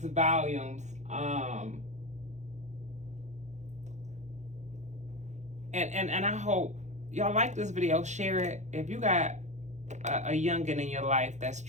volumes. And I hope y'all like this video. Share it. If you got a youngin in your life that's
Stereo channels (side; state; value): left; late; 0.34 ms